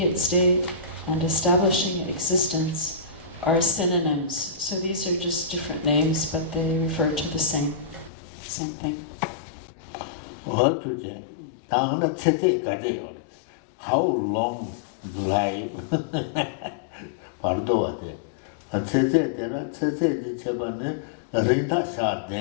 state, and establishing existence are synonyms. So these are just different names, but they refer to the same thing. What to do? How long life? Bardo, a Tete, Chebane, Rita Sha,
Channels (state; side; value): drops out; right; at 8.1 s